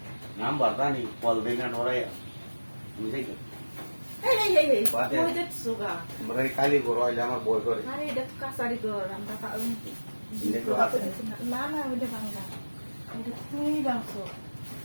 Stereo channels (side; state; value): both; inverted; correlation -1.00